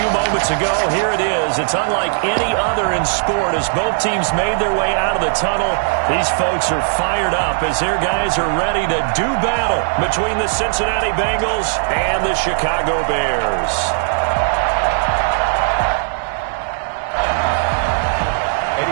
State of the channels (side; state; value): left; silent; digital silence